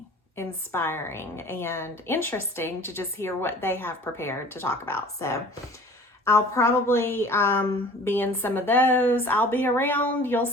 inspiring and interesting to just hear what they have prepared to talk about. So I'll probably be in some of those. I'll be around. You'll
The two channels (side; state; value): both; normal; correlation 0.46